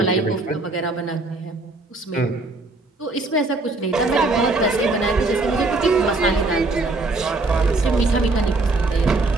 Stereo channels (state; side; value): quieter; left; 3.2 dB